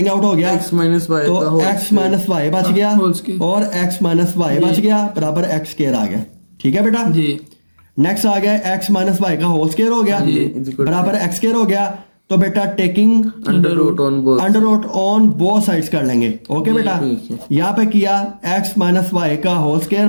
आउट हो गया, x माइनस वाई, तो x माइनस वाई बच गया और x माइनस वाई बच गया, बराबर x स्क्वायर आ गया। ठीक है बेटा? नेक्स्ट आ गया x माइनस वाई का होल स्क्वायर हो गया, बराबर x स्क्वायर हो गया। तो बेटा taking under root on both sides कर लेंगे। ओके बेटा, यहाँ पे किया x माइनस वाई का होल स्क्वायर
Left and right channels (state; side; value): inverted; both; correlation -1.00